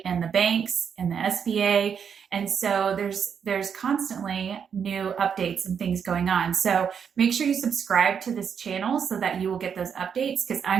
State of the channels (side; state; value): left; quieter; 7.2 dB